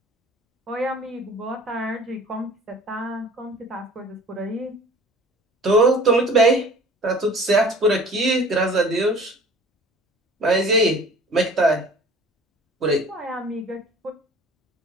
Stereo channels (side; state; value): both; normal; correlation 0.47